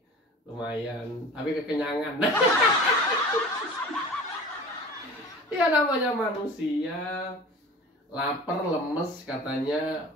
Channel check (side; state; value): both; normal; correlation 0.40